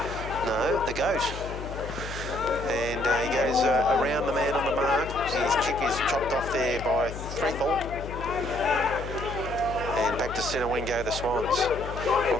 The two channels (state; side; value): noise; left; hum, 9 dB below the sound